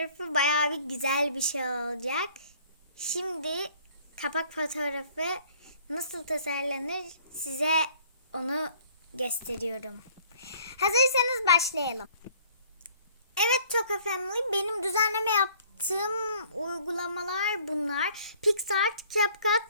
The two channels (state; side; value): inverted; both; correlation -0.56